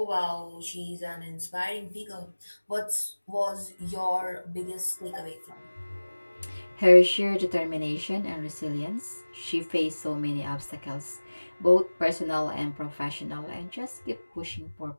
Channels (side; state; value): both; inverted; correlation -1.00